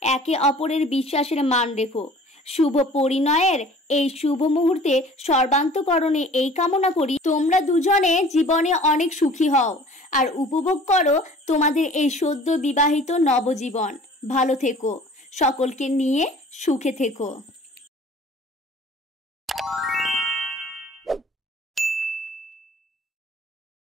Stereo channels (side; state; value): both; normal; correlation 0.48